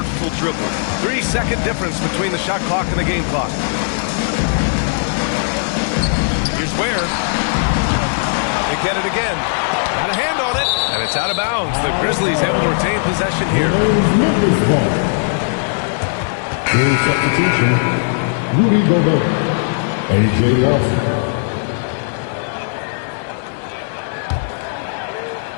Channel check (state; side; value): silent; right; digital silence